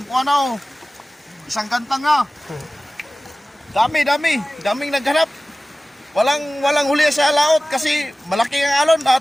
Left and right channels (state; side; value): normal; both; correlation 0.97